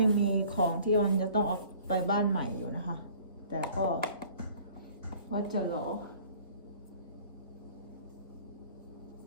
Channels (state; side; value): inverted; both; correlation -0.51